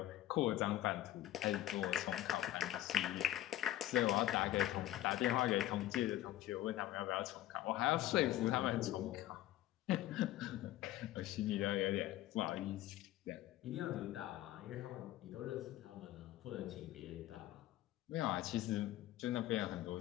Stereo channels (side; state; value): right; quieter; 14.2 dB